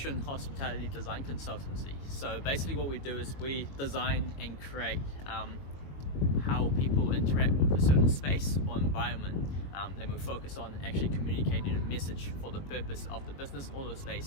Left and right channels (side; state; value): right; late; 22 ms